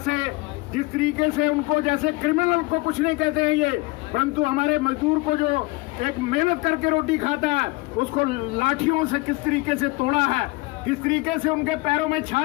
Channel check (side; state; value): right; quieter; 24.0 dB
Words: जिस तरीके से उनको जैसे क्रिमिनल को कुछ नहीं कहते हैं ये, परंतु हमारे मजदूर को जो एक मेहनत करके रोटी खाता है उसको लाठियों से किस तरीके से तोड़ा है, किस तरीके से उनके पैरों में